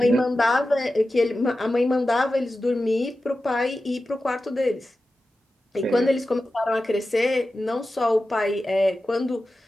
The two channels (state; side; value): normal; both; correlation 0.93